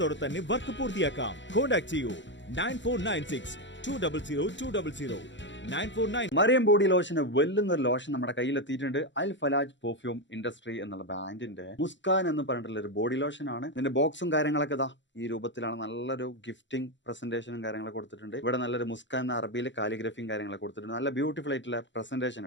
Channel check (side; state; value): right; late; 0.53 ms